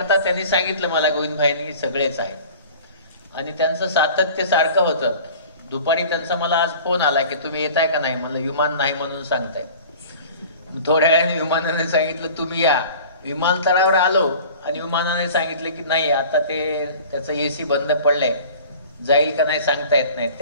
त्यांनी सांगितलं मला गोविंदभाईंनी सगळेच आहेत आणि त्यांचं सातत्य सारखं होतं. दुपारी त्यांचा मला आज फोन आला की तुम्ही येताय का नाही. मला विमान नाही म्हणून सांगताय. थोड्या वेळाने विमानाने सांगितलं तुम्ही या. विमानतळावर आलो आणि विमानाने सांगितलं की नाही आता त्याचं AC बंद पडलंय, जाईल का नाही सांगता येत नाही.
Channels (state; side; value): inverted; both; correlation -0.43